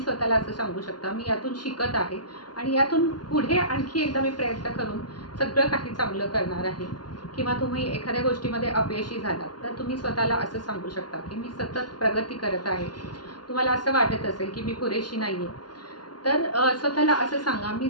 स्वतःला असं सांगू शकता, मी यातून शिकत आहे आणि यातून पुढे आणखी एकदा मी प्रयत्न करून सगळं काही चांगलं करणार आहे. किंवा तुम्ही एखाद्या गोष्टीमध्ये अपयशी झालात तर तुम्ही स्वतःला असं सांगू शकता की मी सतत प्रगती करत आहे. तुम्हाला असं वाटत असेल की मी पुरेशी नाही आहे, तर स्वतःला असं सांगा, मी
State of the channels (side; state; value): right; late; 0.70 ms